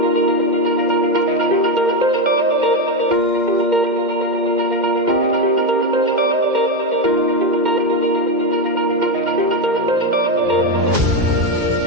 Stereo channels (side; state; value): left; late; 2.1 ms